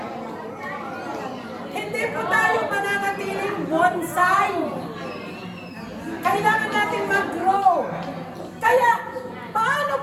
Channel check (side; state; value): both; identical; correlation 1.00